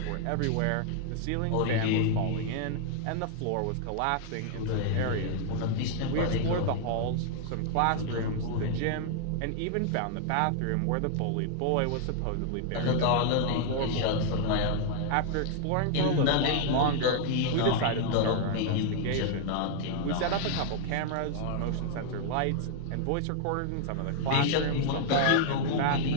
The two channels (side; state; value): both; different; correlation -0.01